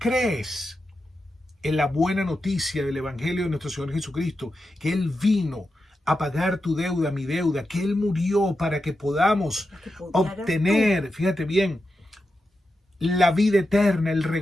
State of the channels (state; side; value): normal; both; correlation 0.89